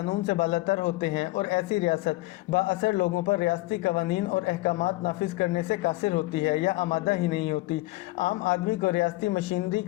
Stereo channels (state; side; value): quieter; right; 20.3 dB